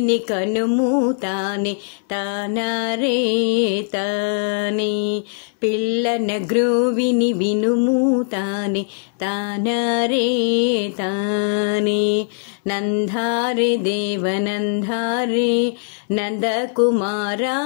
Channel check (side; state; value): right; silent; 66 dB below the other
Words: కనుము తానే తానారే తానే పిల్లన గ్రోవిని వినుము తానే తానారే తానే నందారే దేవనందారే నందకుమారా